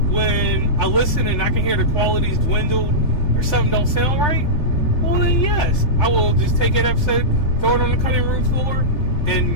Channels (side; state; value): right; late; 3.4 ms